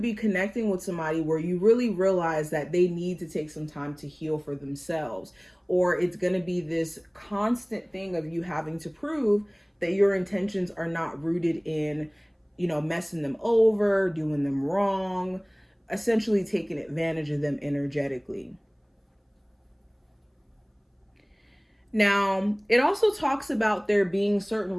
be connecting with somebody where you really realize that they need to take some time to heal for themselves. Or it's going to be this constant thing of you having to prove that your intentions are not rooted in, messing them over, doing them wrong, essentially taking advantage of them energetically. Now, it also talks about there being certain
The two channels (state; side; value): identical; both; correlation 1.00